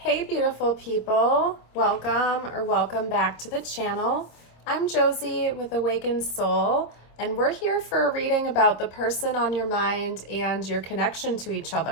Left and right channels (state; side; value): late; right; 26 ms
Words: Hey beautiful people, welcome back to the channel. I'm Josie with Awakened Soul, and we're here for a reading about the person on your mind and your connection to each